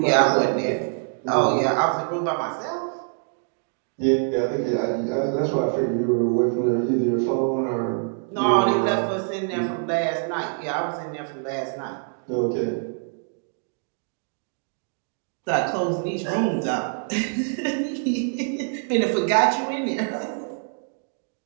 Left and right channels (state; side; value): silent; left; 62 dB below the other